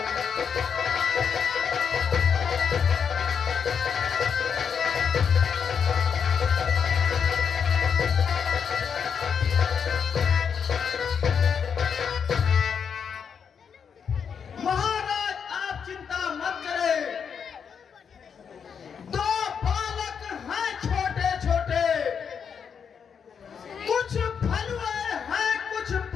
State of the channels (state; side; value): quieter; right; 6.9 dB